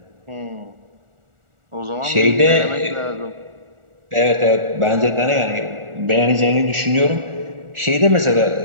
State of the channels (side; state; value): left; late; 1.4 ms